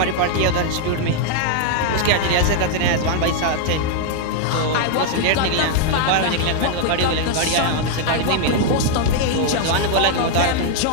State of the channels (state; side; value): different; both; correlation 0.00